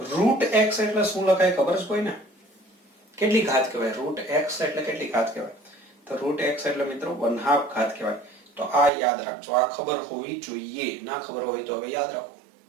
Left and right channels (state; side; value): drops out; left; at 8.9 s